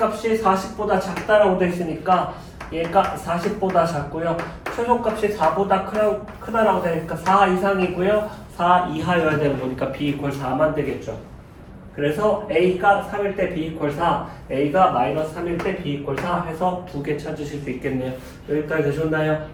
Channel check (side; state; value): both; identical; correlation 1.00